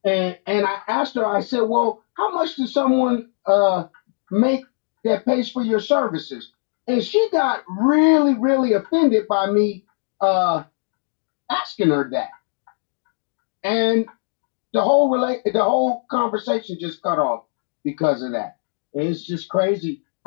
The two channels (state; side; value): silent; right; digital silence